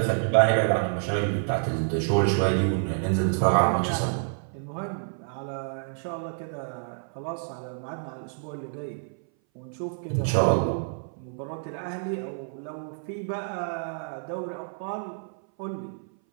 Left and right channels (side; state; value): left; silent; 58 dB below the other